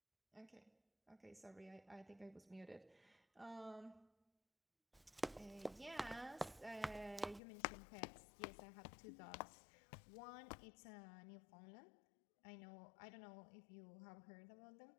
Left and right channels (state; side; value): drops out; right; at 7.4 s